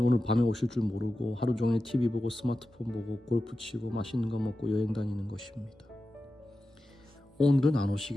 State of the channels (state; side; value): normal; both; correlation 0.93